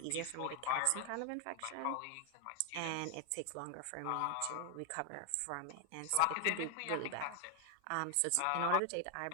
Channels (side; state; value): both; different; correlation 0.00